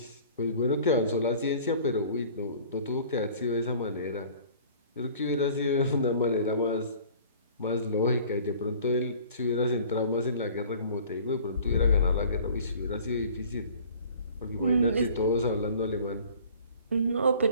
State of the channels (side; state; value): both; inverted; correlation -0.49